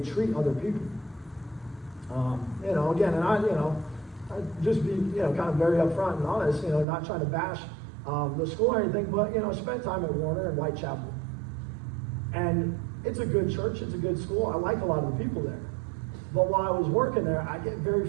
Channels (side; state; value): left; drops out; at 6.9 s